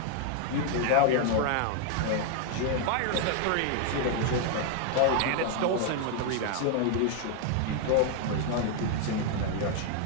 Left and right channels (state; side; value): different; both; correlation 0.00